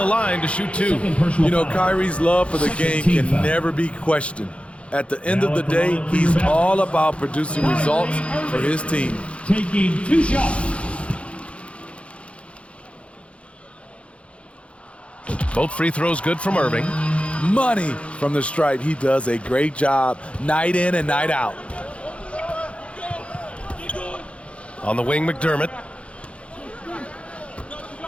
line to shoot two. You know, Kyrie's love for the game can never be questioned. At the end of the day, he's all about producing results for his team. Taking two shots. Both free throws good from Irving. Money from the stripe. He does a great job night in and night out. On the wing, McDermott.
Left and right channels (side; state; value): right; late; 0.061 ms